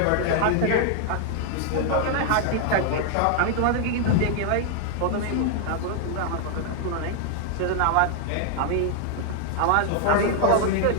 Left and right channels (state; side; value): different; both; correlation 0.00